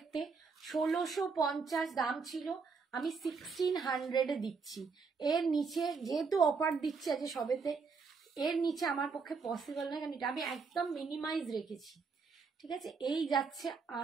1650 দাম ছিল, আমি 1600-এ দিচ্ছি। এর নিচে যেহেতু অফার দিচ্ছে আছে সবেতে, এর নিচে আমার পক্ষে পসিবল নয়, কারণ এটা আমি একদম মিনিমাইজ রেখেছি, ঠিক আছে। এই যাচ্ছে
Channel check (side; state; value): left; quieter; 5.0 dB